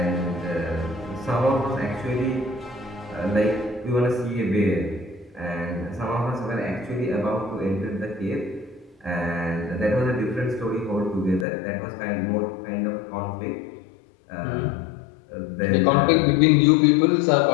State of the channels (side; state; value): right; drops out; at 11.5 s